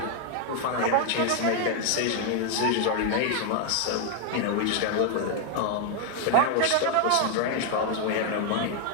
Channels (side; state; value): both; different; correlation 0.00